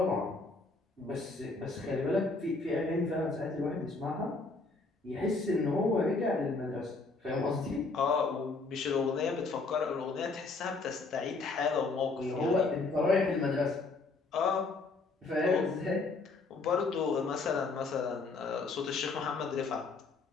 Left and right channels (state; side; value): quieter; right; 3.8 dB